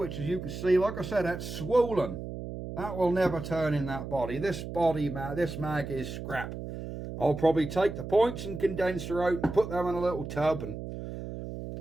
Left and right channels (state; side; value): noise; right; hum, 8 dB below the sound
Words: as you can see, like I said, that's swollen. That will never turn in that body. This mag is scrap. I'll probably take the points and condenser out and put them in a little tub and